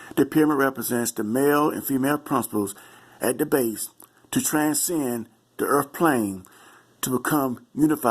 The pyramid represents the male and female principles at the base to transcend the earth plane to become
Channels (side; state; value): both; identical; correlation 1.00